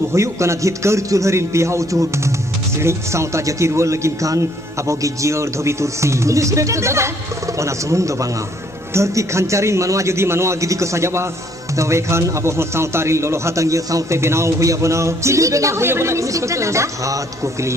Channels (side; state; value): both; normal; correlation 0.65